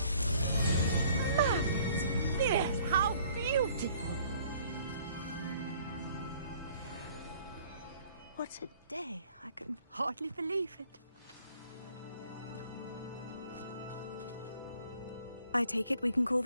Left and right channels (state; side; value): inverted; both; correlation -0.58